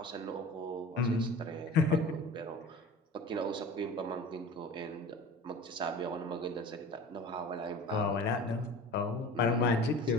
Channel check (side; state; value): both; normal; correlation 0.38